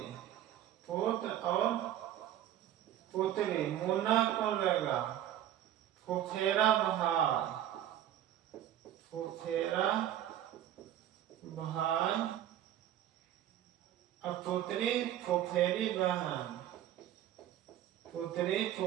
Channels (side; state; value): left; quieter; 11.8 dB